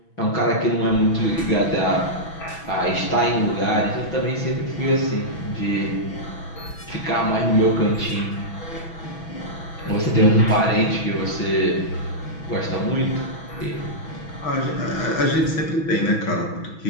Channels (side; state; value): right; late; 6.1 ms